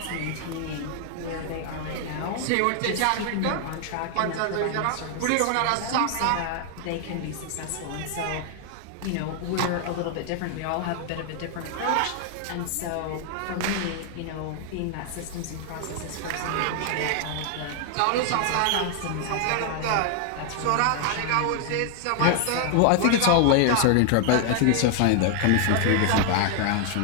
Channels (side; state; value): both; different; correlation 0.00